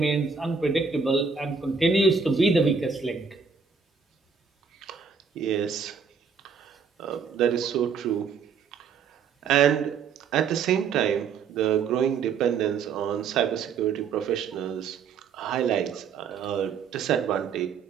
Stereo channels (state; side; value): quieter; left; 5.9 dB